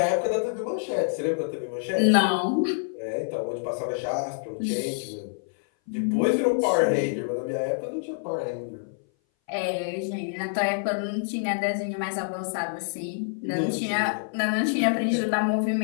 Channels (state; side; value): silent; right; 58 dB below the other